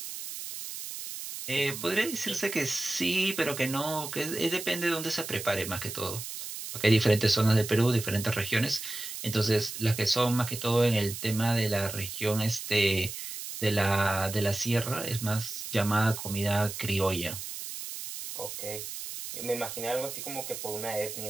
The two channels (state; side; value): noise; right; hiss, 8 dB below the sound